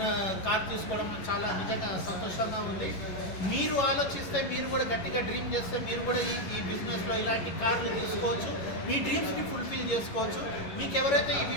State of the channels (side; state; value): right; late; 11 ms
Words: కార్ తీసుకోవడం నాకు చాలా నిజంగా సంతోషంగా ఉంది. మీరు ఆలోచిస్తే, మీరు కూడా గట్టిగా డ్రీమ్ చేస్తే మీరు కూడా ఈ బిజినెస్లో ఇలాంటి కార్లు తీసుకోవచ్చు, మీ డ్రీమ్స్ని ఫుల్ఫిల్ చేసుకోవచ్చు. మీకు ఎవరైతే ఈ